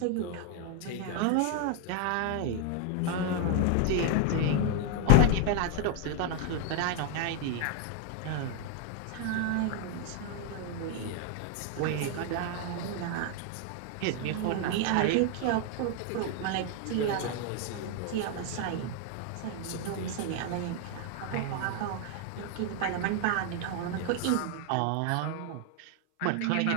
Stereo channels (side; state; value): both; different; correlation 0.00